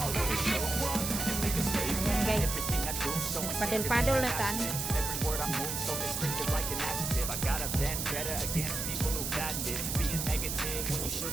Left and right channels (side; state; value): right; noise; hiss, 3 dB below the sound